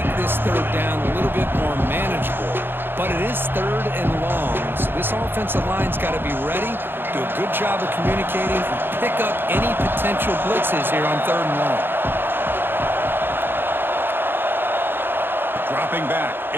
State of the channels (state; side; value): late; left; 0.10 ms